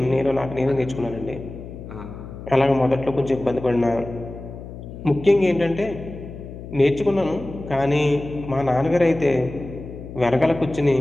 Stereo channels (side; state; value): left; noise; hum, 12 dB below the sound